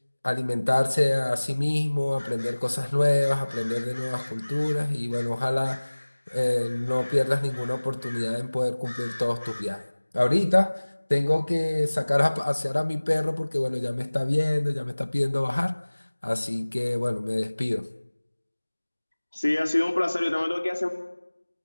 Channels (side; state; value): both; inverted; correlation -1.00